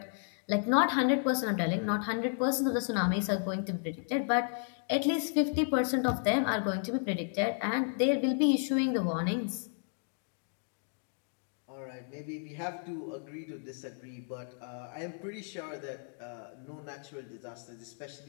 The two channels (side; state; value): right; silent; 56 dB below the other